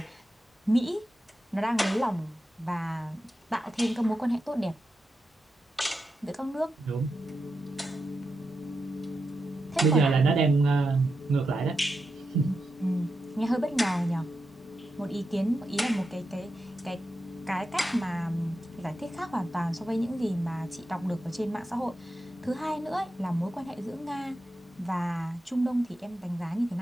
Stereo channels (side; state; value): both; normal; correlation 0.88